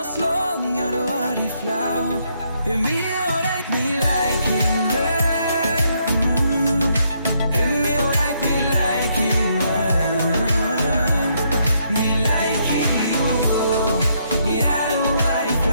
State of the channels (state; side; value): inverted; both; correlation -0.74